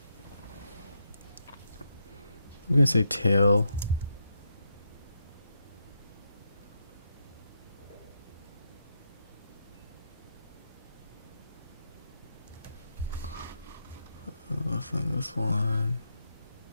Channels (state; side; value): inverted; both; correlation -0.81